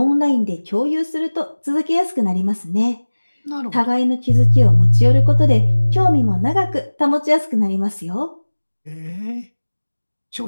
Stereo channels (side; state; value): both; inverted; correlation -1.00